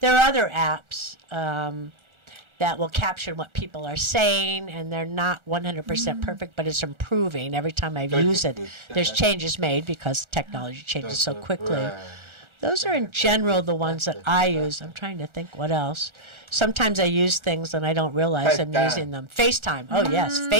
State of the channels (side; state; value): left; late; 1.4 ms